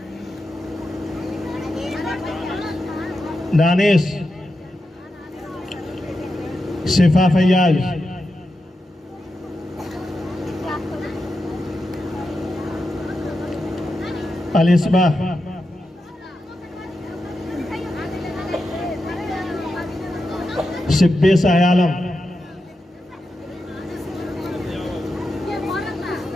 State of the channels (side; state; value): both; normal; correlation 0.88